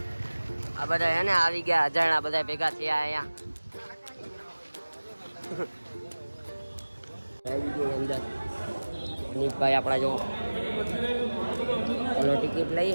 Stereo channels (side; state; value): both; inverted; correlation -1.00